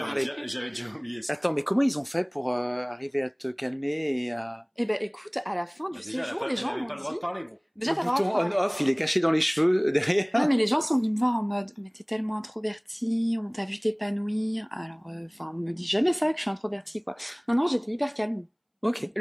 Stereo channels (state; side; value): identical; both; correlation 1.00